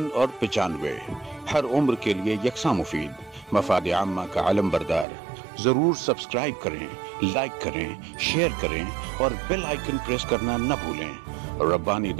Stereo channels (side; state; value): left; drops out; at 5.1 s